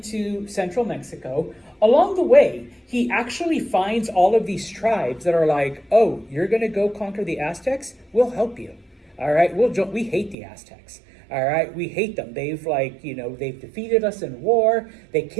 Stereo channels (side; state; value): left; drops out; at 10.4 s